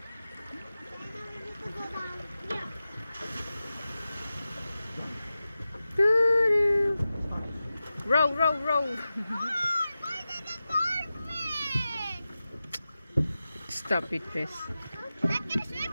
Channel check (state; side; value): inverted; both; correlation -0.94